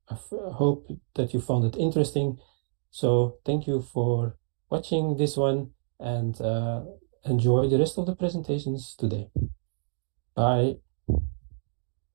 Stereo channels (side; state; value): left; silent; 59 dB below the other